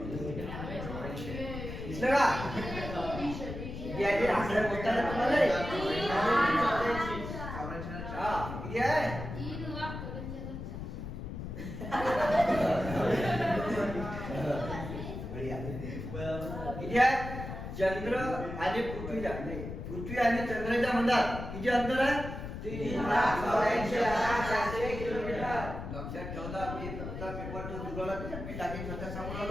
दिसलं का? याचे आकडे बोलताना तुम्हाला हा किती आहे? किती आहे? चंद्र आणि पृथ्वीच्या पृथ्वी आणि चंद्राच्या मधात किती अंतर आहे? 3,84,400 किलोमीटर. लक्षात ठेवला. मी फक्त पेपर तो जुळवला मी टाकीन स्वतः सांगून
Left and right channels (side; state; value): left; noise; rumble, 7 dB below the sound